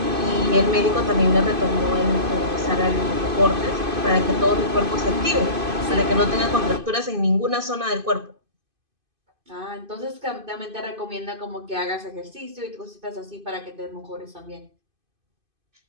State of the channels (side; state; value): left; late; 2.5 ms